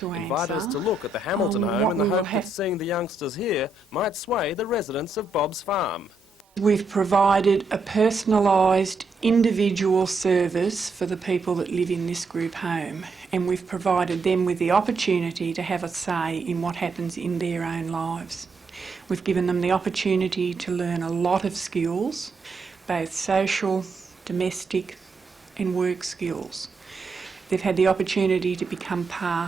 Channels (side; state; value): left; quieter; 3.5 dB